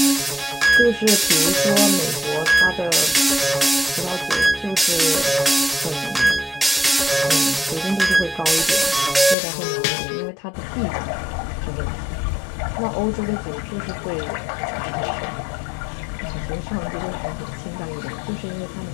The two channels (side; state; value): right; drops out; at 9.3 s